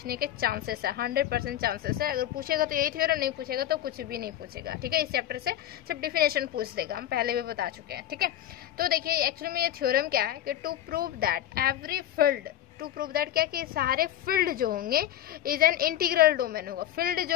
के चांसेस है, 100% चांसेस है। अगर पूछेगा तो यही थ्योरम, नहीं पूछेगा तो कुछ भी नहीं पूछेगा। ठीक है, इस चैप्टर से सिर्फ डिफिनेशन पूछ देगा, हम पहले भी बता चुके हैं। ठीक है, तो देखिए एक्चुअली में ये थ्योरम क्या है कि to prove that every field, to prove that क्या कि सारे फील्ड जो होंगे इज एन इंटीग्रल डोमेन होगा। फील्ड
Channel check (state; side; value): quieter; right; 12.1 dB